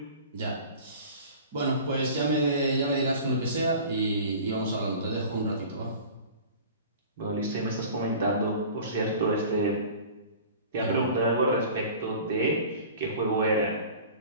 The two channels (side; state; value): both; inverted; correlation -0.42